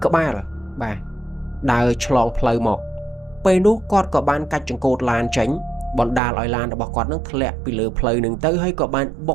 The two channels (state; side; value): drops out; left; at 6.2 s